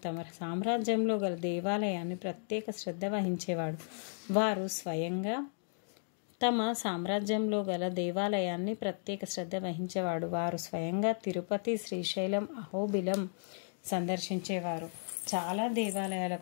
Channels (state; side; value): silent; right; digital silence